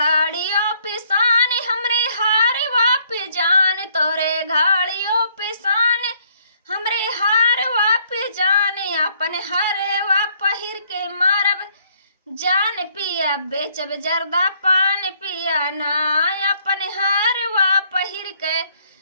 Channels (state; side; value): inverted; both; correlation -0.66